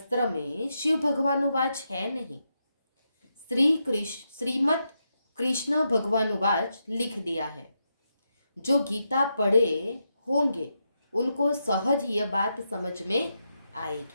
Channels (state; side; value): inverted; both; correlation -0.84